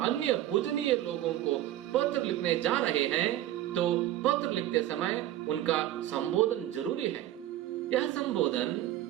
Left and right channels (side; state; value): left; quieter; 13.4 dB